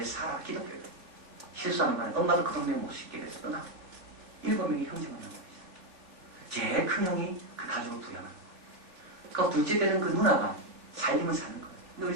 사라, 기독교인이에요. 실수하는 바람에 엄마도 그 동네 못 씻게 돼서 떠나고, 7명이 형제만 남은 거죠. 제일 큰 형이 그 가족을 부양하는 거예요. 그러니까 둘째 되는 그 누나가 살림을 사는 거예요. 근데 우리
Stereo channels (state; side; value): late; left; 3.4 ms